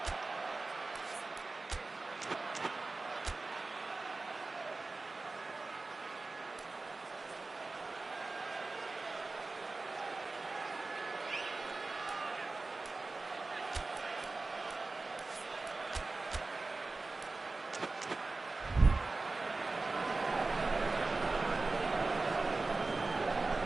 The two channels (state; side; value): quieter; left; 3.5 dB